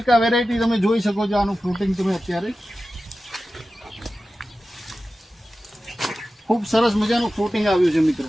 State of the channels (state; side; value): normal; both; correlation 0.94